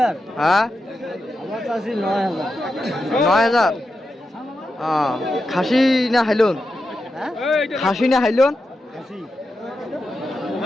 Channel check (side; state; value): both; normal; correlation 0.88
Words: হ্যাঁ 9,000 খাসি না হাইলন খাসি না হাইলন